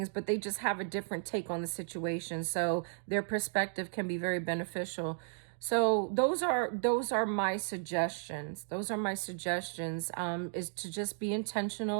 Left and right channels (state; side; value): silent; left; digital silence